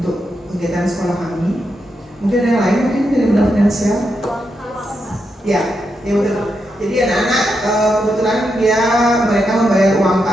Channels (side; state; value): both; normal; correlation 0.84